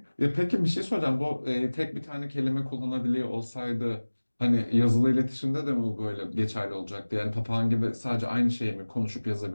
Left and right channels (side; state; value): both; inverted; correlation -1.00